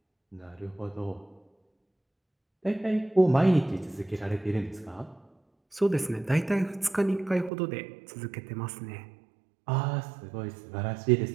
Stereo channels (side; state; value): left; drops out; at 7.5 s